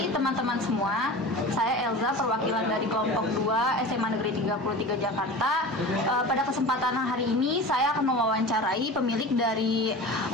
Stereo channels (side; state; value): both; normal; correlation 0.33